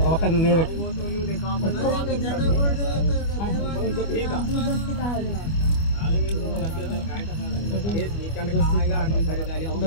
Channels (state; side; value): late; right; 25 ms